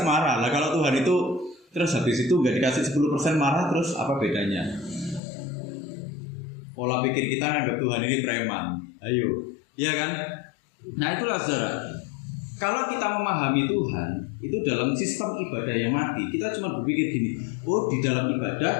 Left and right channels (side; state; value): right; drops out; at 5.2 s